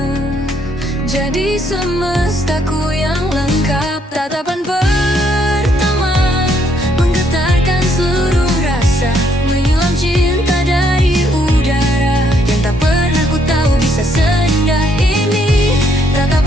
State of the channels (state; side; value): normal; both; correlation 0.70